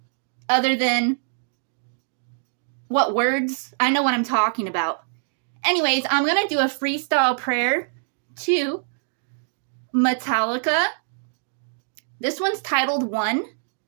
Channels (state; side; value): silent; left; digital silence